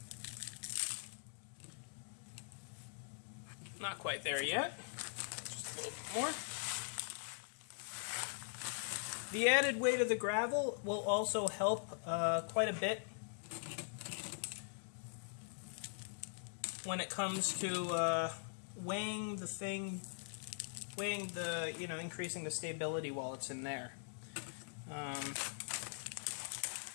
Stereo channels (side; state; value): right; silent; digital silence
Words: Not quite there yet. Just a little bit more. The added weight of the gravel will also help quite a bit when it comes to weighing the increasing the stability while it's in there.